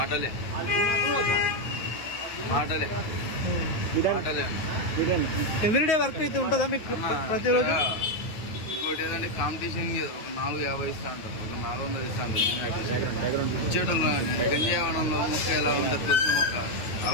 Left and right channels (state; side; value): late; right; 9.5 ms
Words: మాటలే ఎవ్రీడే వర్క్ అయితే ఉంటుందా మీకు ప్రతిరోజు? ఇంకోటి ఏదంటే కాంపిటీషన్ ఒక 450 ఇస్తా అంటారు, ఒక 400 ఇస్తా అంటారు. ఇచ్చేటోళ్ళు గంజావనంలో మొక్క ఎలా ఉంటుంది, తులసి మొక్క,